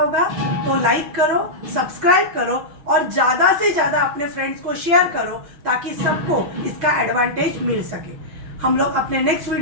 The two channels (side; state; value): left; late; 6.2 ms